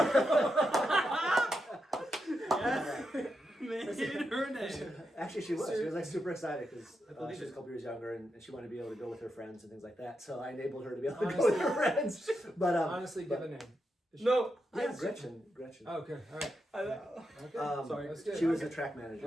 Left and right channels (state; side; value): normal; both; correlation 0.85